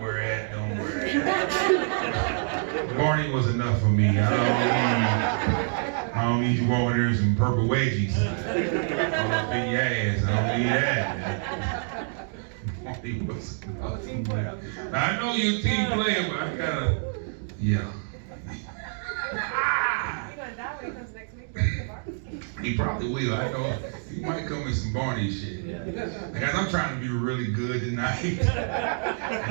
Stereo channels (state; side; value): silent; left; 60 dB below the other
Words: it. Don't wear it. Barney was enough for me. I don't need you walking there in some purple wedgies. All up in your ass. I don't need that. Barney was enough. I'm a team player. I know you're a team player, but I gotta, yeah. You're gonna die when it comes next week. He probably will. I know he might come with some Barney shit. Guys, I'm trying to be really good tonight